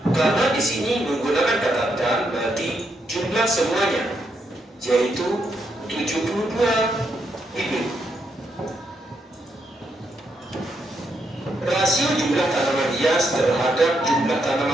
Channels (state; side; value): normal; both; correlation 0.79